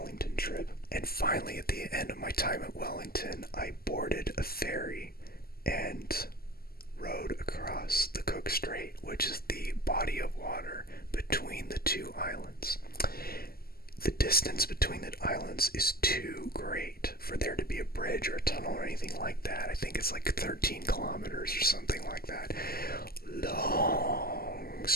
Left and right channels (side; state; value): right; late; 0.44 ms